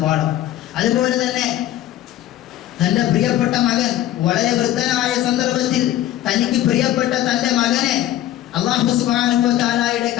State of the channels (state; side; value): quieter; right; 13.2 dB